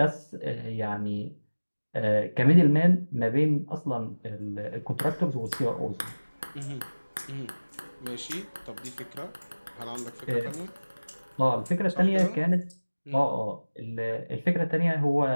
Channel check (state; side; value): inverted; both; correlation -1.00